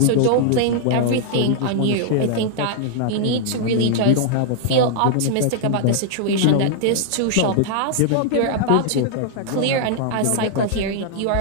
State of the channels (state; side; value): different; both; correlation -0.01